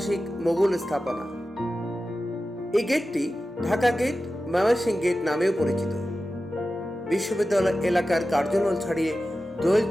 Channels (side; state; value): both; normal; correlation 0.93